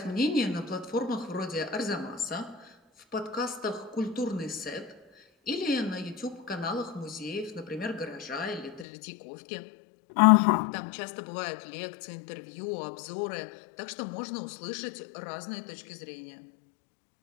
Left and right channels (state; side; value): drops out; right; at 8.8 s